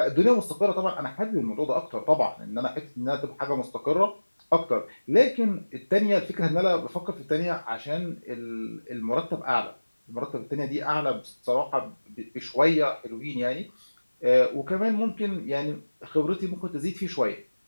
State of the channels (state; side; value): inverted; both; correlation -1.00